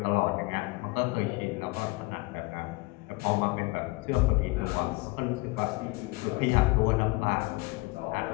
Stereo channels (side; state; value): right; quieter; 23.4 dB